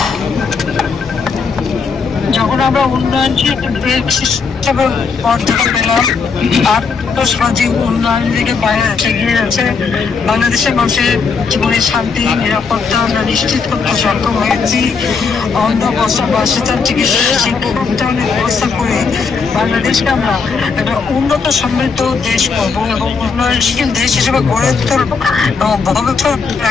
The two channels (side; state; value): right; quieter; 5.2 dB